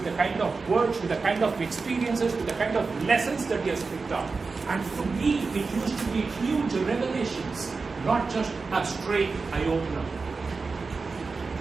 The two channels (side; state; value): left; quieter; 4.3 dB